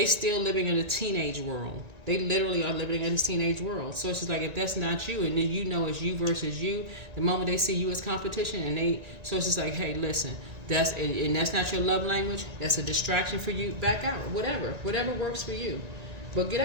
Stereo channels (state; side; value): late; left; 1.9 ms